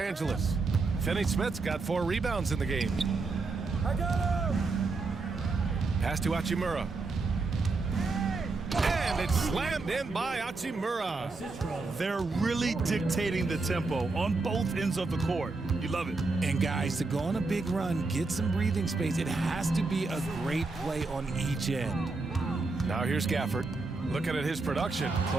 Finney-Smith's got 4 rebounds in the game. Pass to Hachimura. And it's slammed in by Hachimura. They're really dictating the tempo on both ends of the court. You love it. And guys, to go on a big run, get some breathing space, it has to be a great play on each end. Now here's Gafford. Looking at his production,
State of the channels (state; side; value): quieter; left; 3.8 dB